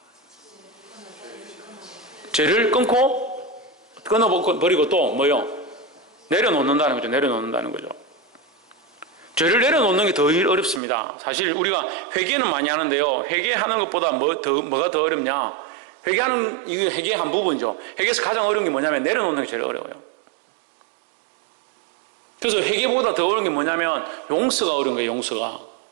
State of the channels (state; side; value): drops out; left; at 10.8 s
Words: 죄를 끊어버리고 또 뭐요? 내려놓는다는 거죠. 내려놓는다는 거죠. 죄를 내려놓는 게 더 어렵습니다. 사실 우리가 회개는 많이 하는데요. 회개하는 것보다 뭐가 더 어렵냐? 이게 회개의 한 부분이죠. 회개에서 가장 어려운 게 뭐냐면 내려놓는 게 제일 어려워요. 그래서 회개보다 더 어려운 게 뭐냐면 용서가 어려운 거예요.